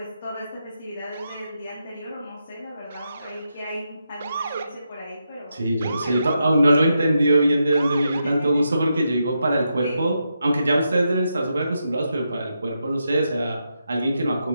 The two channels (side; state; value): both; inverted; correlation -0.84